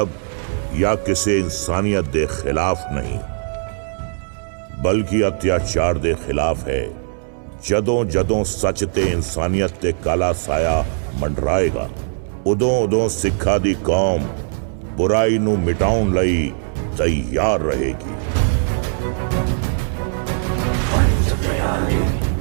या किसे इंसानियत दे खिलाफ नहीं, बल्कि अत्याचार दे खिलाफ है। ਜਦੋਂ ਜਦੋਂ ਸੱਚ ਤੇ ਇਨਸਾਨੀਅਤ ਤੇ ਕਾਲਾ ਸਾਇਆ ਮੰਡਰਾਏਗਾ, ਉਦੋਂ ਉਦੋਂ ਸਿੱਖਾਂ ਦੀ ਕੌਮ ਬੁਰਾਈ ਨੂੰ ਮਿਟਾਉਣ ਲਈ ਤਿਆਰ ਰਹੇਗੀ। पंच प्यारे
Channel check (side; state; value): left; silent; digital silence